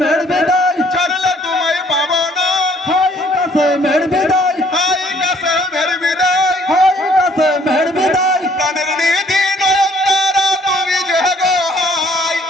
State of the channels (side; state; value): both; normal; correlation 0.61